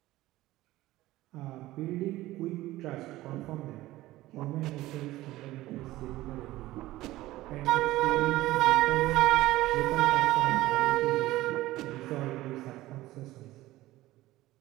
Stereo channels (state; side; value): quieter; left; 16.9 dB